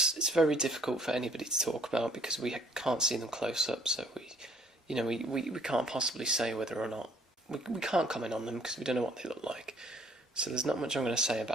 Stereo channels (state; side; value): normal; both; correlation 0.61